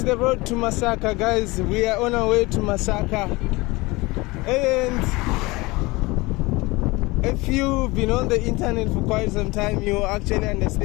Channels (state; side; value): quieter; right; 22.8 dB